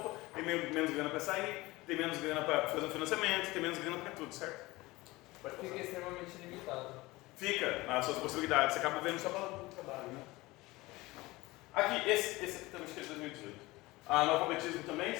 tem menos grana para sair, tem menos grana para fazer um financiamento, tem menos grana para tudo, certo? Fica extremamente limitado. Fica nas suas possibilidades, você acaba vendo só pelo trabalho, né? Aqui, esse aqui também acho que é de 2018. Analfabetismo também,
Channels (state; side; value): quieter; right; 20.7 dB